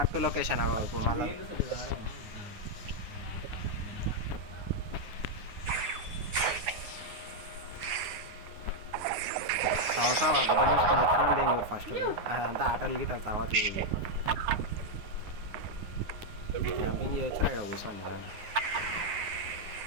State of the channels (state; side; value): late; left; 9.6 ms